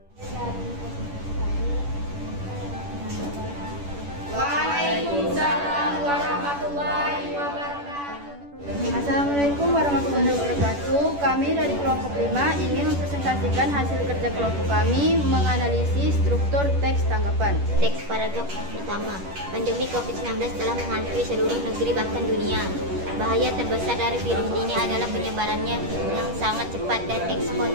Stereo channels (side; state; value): left; late; 10 ms